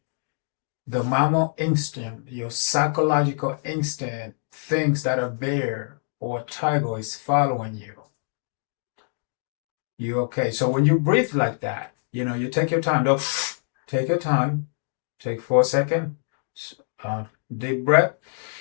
The mammal instinct, your psychological instinct, thinks that a bear or a tiger is following you. You're okay. So when you breathe like that, you take your time. Don't take your time. Take 4 seconds. Deep breath.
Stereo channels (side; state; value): right; silent; digital silence